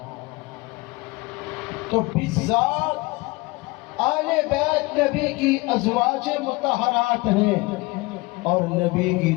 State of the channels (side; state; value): right; quieter; 23.6 dB